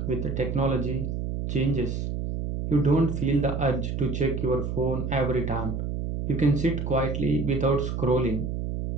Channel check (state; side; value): noise; right; hum, 3 dB below the sound